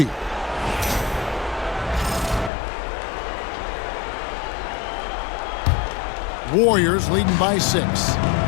Warriors leading by 6.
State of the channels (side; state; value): right; drops out; at 2.5 s